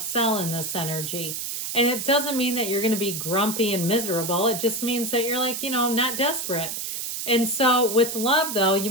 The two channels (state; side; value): noise; right; hiss, 4 dB below the sound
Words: sell in this energy. And it doesn't mean that you're going to be grumpy and miserable. It just means that you're like, you know, not desperate. And so with love, though, you